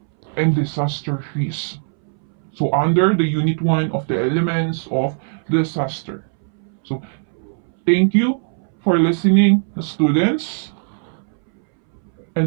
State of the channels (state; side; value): silent; left; 64 dB below the other